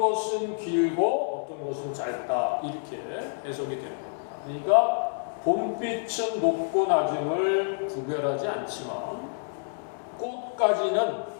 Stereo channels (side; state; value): right; silent; digital silence